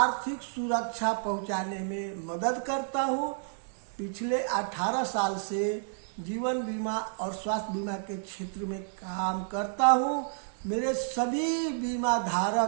सुरक्षा पहुँचाने में मदद करता हूँ। पिछले 18 साल से जीवन बीमा और स्वास्थ्य बीमा के क्षेत्र में काम करता हूँ। मेरे सभी बीमा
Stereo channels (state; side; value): silent; left; digital silence